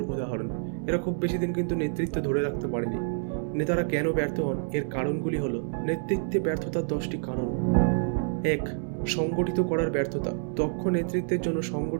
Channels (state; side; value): silent; left; 59 dB below the other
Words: উদাহরণ। এরা খুব বেশি দিন কিন্তু নেতৃত্ব ধরে রাখতে পারেনি। নেতারা কেন ব্যর্থ হন, এর কারণগুলি হলো: নেতৃত্বে ব্যর্থতার 10টি কারণ। 1. সংগঠিত করার ব্যর্থতা। দক্ষ নেতৃত্বের জন্য